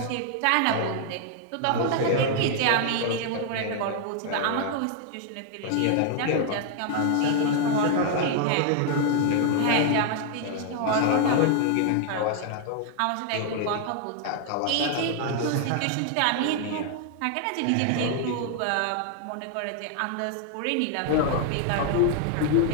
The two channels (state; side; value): different; both; correlation 0.00